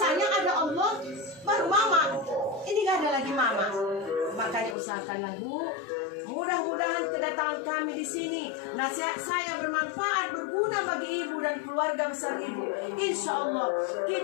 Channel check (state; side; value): drops out; right; at 4.8 s